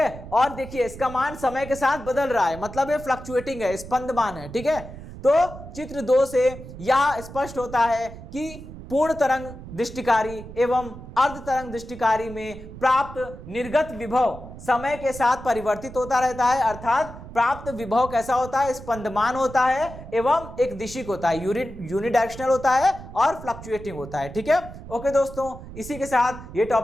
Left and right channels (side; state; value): right; noise; rumble, 14 dB below the sound